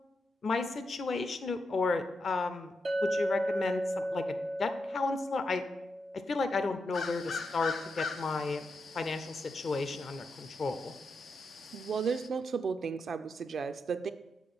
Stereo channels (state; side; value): normal; both; correlation 0.85